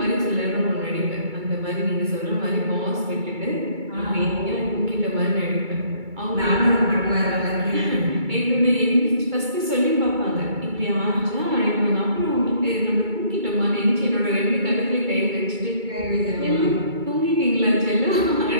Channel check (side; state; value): left; late; 2.3 ms